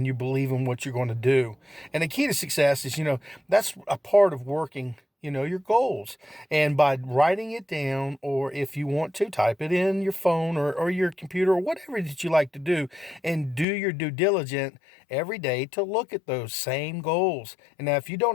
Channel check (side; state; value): right; drops out; at 13.7 s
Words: you believe in what you're going to do. And the key to success is, that's a part of working your goals. And by writing it down, or if you want to, type it in your phone or your computer or whatever that you like to do, and do your due diligence every day to look at those same goals. And now if you don't